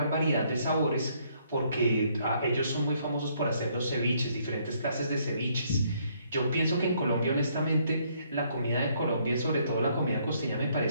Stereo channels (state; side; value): inverted; both; correlation -0.68